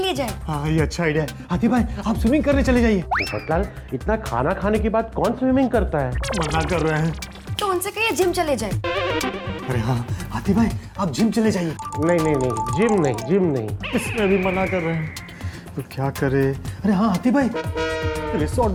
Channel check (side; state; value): both; identical; correlation 1.00